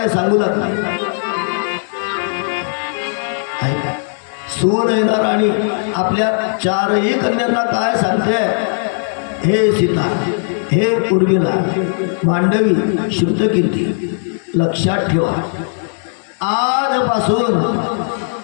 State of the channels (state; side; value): silent; right; digital silence